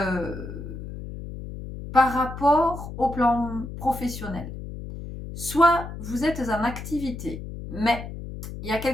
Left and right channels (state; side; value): noise; left; hum, 10 dB below the sound